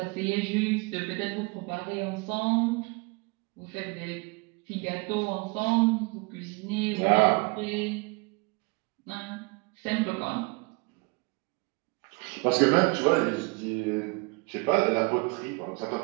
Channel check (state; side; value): quieter; left; 29.3 dB